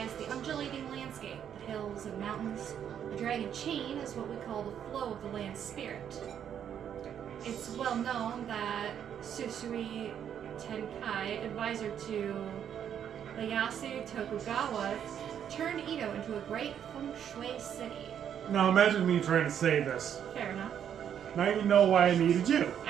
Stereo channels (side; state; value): left; quieter; 9.0 dB